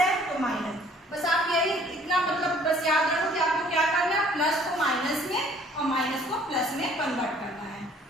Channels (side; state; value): both; normal; correlation 0.57